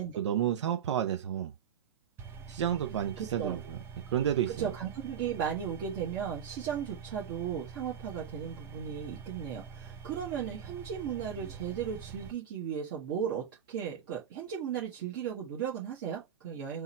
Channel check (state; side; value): quieter; left; 8.6 dB